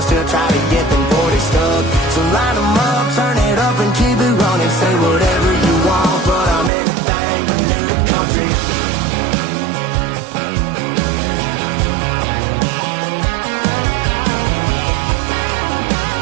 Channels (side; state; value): left; drops out; at 6.7 s